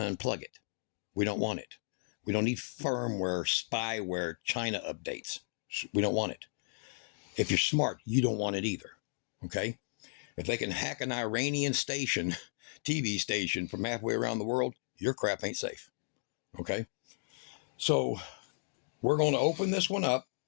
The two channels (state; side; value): silent; right; digital silence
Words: to unplug it. We don't want it. We don't need firmware, spyware, China updates. We don't want it. If you're smart, you don't want it either. Okay? If they can hack an Iranian station, TV station from halfway around the world, your crap ain't safe. Okay? So we're going to open this one up,